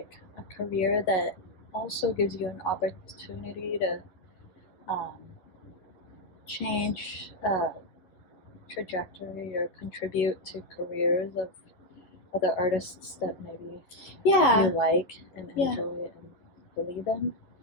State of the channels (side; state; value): right; late; 11 ms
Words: a career that also gives you an opportunity to change trajectory or contribute to careers of other artists that maybe Yeah, you like and Yeah. enjoy and believe in.